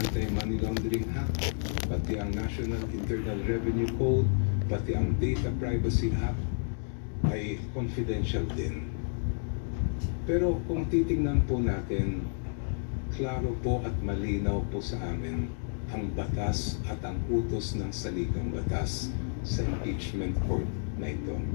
Laundering Act, pati ang National Internal Revenue Code, pati ang Data Privacy Act ay confidential din. Pero kung titingnan po natin, klaro po at malinaw po sa amin ang batas at ang utos ng saligang batas sa impeachment court na ito.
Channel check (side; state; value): right; silent; digital silence